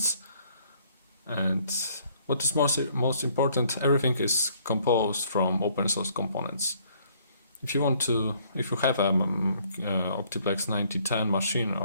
And what is most important, everything is composed from open source components. If you have a OptiPlex 9010 machine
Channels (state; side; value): inverted; both; correlation -0.63